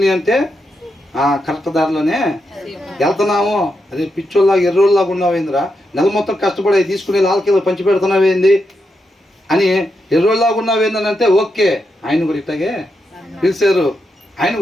అంటే కరెక్ట్ దారిలోనే వెళ్తున్నాము. అదే పిచ్చోళ్ళలాగా ఎర్రోళ్ళలాగా ఉన్నావేందిరా, నెల మొత్తం కష్టపడి తీసుకుని లాల్కీలో పంచి పెడుతున్నావేంది అని ఎర్రోళ్ళలాగా ఉన్నావేందని అంటే ఓకే, ఆయన కూడా ఇట్టాగే పిలిచారు, ఆయన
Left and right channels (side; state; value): both; normal; correlation 0.84